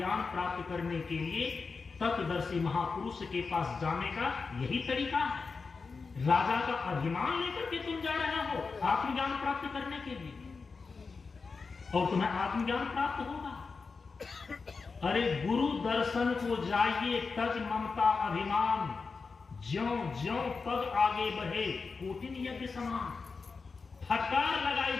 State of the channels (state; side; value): quieter; right; 4.6 dB